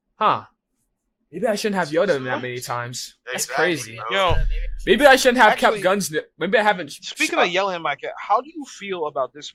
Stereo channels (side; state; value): both; identical; correlation 1.00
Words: huh, maybe I shouldn't have yelled at him that many times. That's crazy. Yo, Maybe I shouldn't have Actually, kept guns. Maybe I haven't. speaking of yelling at my kid, how do you feel about